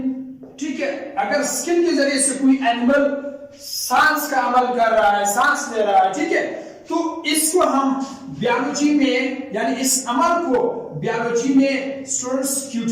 ठीक है। अगर स्किन के जरिए से कोई एनिमल सांस का अमल कर रहा है, सांस ले रहा है, ठीक है, तो इसको हम बायोलॉजी में, यानी इस अमल को बायोलॉजी में स्टूडेंट्स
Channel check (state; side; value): identical; both; correlation 1.00